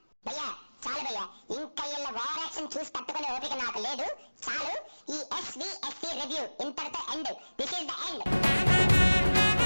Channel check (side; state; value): both; inverted; correlation -1.00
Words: భయ్యా? చాలు భయ్యా, ఇంకా ఇళ్ళ ఓవర్ యాక్షన్ చూసి తట్టుకునే ఓపిక నాకు లేదు. చాలు, ఈ SVSC రివ్యూ ఇంతటితో end. This is the end.